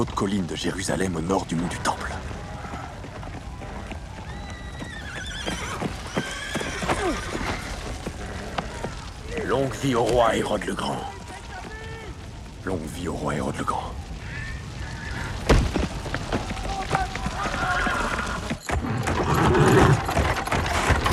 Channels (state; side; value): identical; both; correlation 1.00